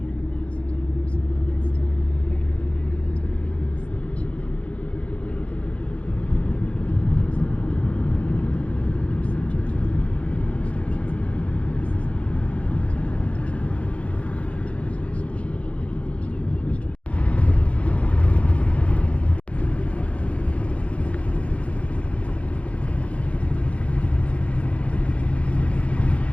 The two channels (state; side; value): late; right; 0.063 ms